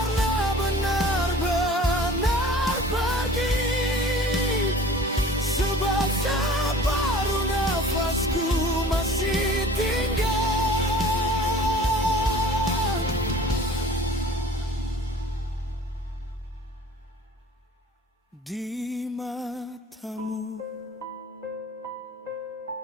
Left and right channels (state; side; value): normal; both; correlation 0.46